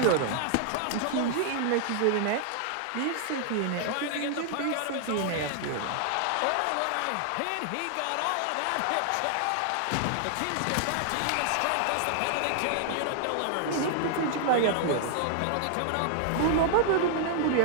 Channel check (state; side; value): different; both; correlation -0.01